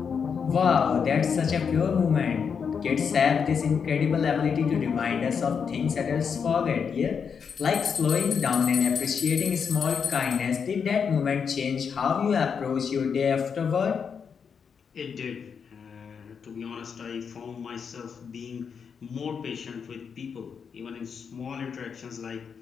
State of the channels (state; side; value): quieter; right; 6.5 dB